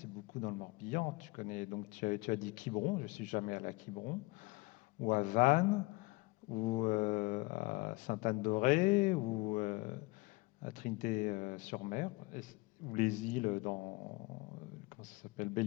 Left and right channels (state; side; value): quieter; right; 24.5 dB